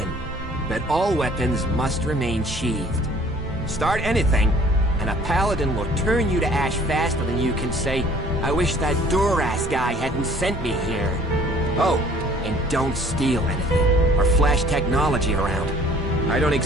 but all weapons must remain sheathed. Start anything, and a paladin will turn you to ash faster than you can say, I wish that Duras guy hadn't sent me here. Oh, and don't steal anything, or flash technology around. I don't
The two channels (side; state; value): both; normal; correlation 0.54